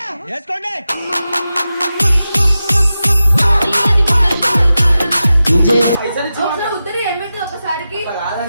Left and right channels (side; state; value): both; inverted; correlation -0.92